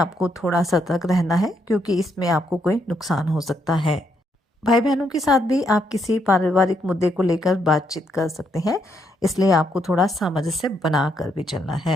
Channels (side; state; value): both; normal; correlation 0.76